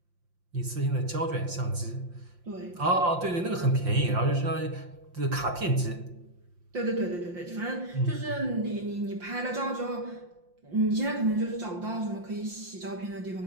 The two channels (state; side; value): late; left; 5.7 ms